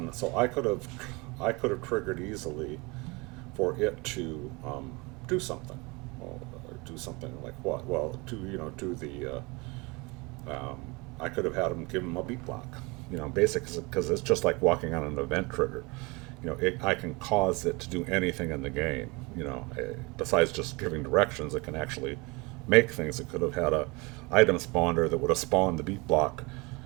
So I could have triggered easily for it to do something. Well, do something like what? Well, do the I could have had them give them a beat block. Basically, because it's just like walking on an event trigger. I can cause it to do anything in the game. Besides just giving directions, it can actually make things. It could have had a item spawner that would have spawned the beat block,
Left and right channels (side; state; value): left; quieter; 26.5 dB